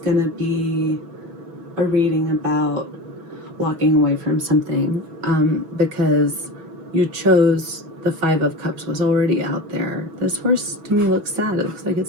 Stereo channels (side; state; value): left; late; 6.2 ms